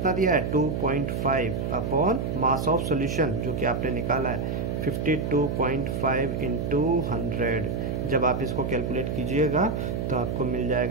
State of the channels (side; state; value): right; noise; hum, 2 dB below the sound